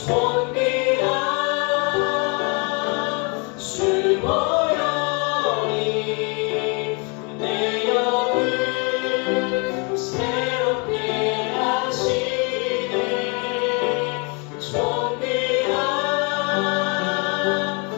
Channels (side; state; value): right; quieter; 33.1 dB